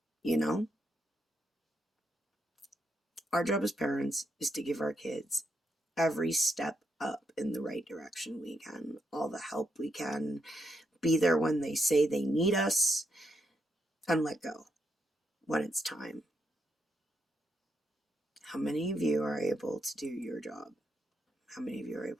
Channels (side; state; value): both; normal; correlation 0.80